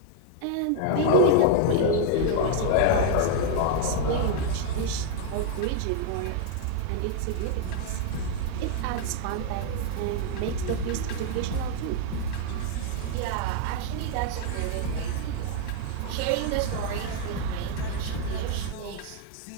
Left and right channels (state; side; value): different; both; correlation 0.00